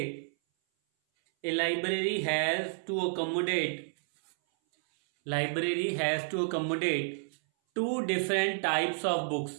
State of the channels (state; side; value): silent; left; 57 dB below the other